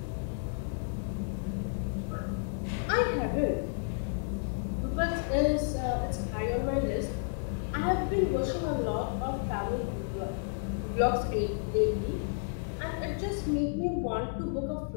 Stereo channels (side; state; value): right; silent; 57 dB below the other